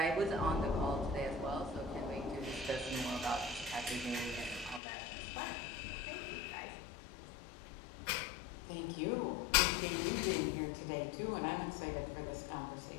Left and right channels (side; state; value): right; drops out; at 4.8 s